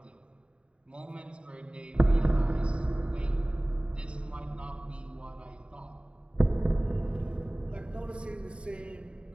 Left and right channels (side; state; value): left; late; 0.056 ms